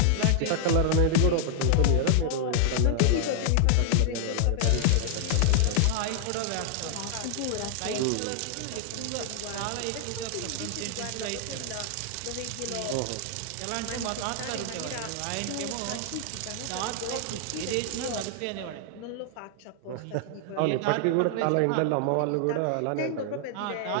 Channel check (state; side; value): different; both; correlation 0.00